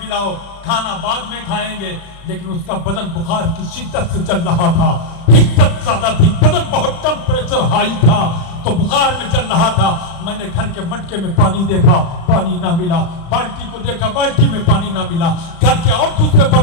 खाना बाद में खाएंगे। लेकिन उसका बदन बुखार की शिद्दत से चल रहा था, हिद्दत ज्यादा थी, बदन बहुत टेम्परेचर हाई था, तो बुखार में चल रहा था। मैंने घर के मटके में पानी देखा, पानी ना मिला, बाल्टी को देखा, बाल्टी में पानी ना मिला, घर के और दूसरे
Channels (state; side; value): late; right; 36 ms